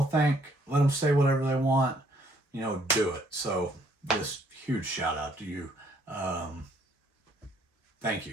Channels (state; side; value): normal; both; correlation 0.66